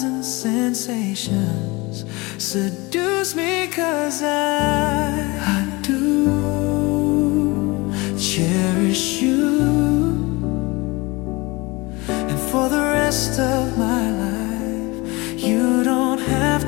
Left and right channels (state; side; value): quieter; right; 24.1 dB